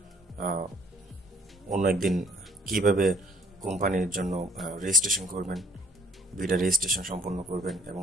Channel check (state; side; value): normal; both; correlation 0.60